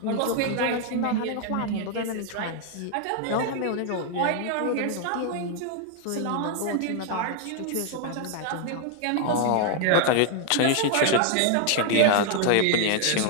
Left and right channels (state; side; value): different; both; correlation 0.00